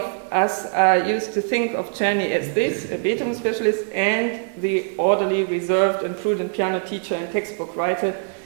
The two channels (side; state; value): left; silent; 64 dB below the other